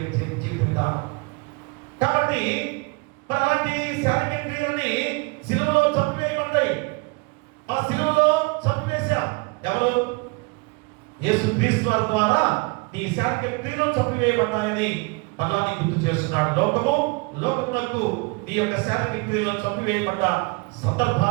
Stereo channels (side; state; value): left; quieter; 29.1 dB